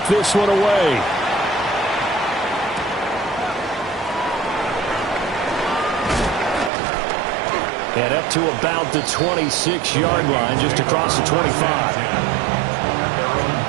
this one away. And up to about the 26-yard line, just across the 25.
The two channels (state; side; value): drops out; left; at 6.7 s